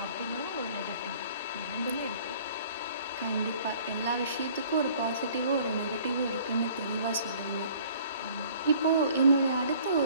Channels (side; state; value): both; inverted; correlation -0.54